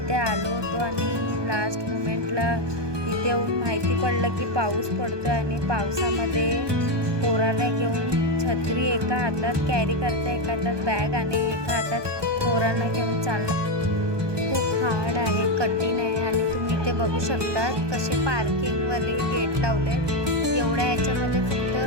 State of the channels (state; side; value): late; left; 1.2 ms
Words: आलो होतो आणि लास्ट मोमेंटला इथे येऊन माहिती पडलं की पाऊस पडतो आणि पावसामध्ये पोरांना घेऊन छत्री एका हातात कॅरी करता, एका हातात बॅग आणि एका हातात पोरांना घेऊन चालणं खूप हार्ड आहे, कठीण आहे. आणि तुम्ही इथे बघू शकता कसे पार्किंगवाले गेट लावलेत. एवढ्या याच्यामध्ये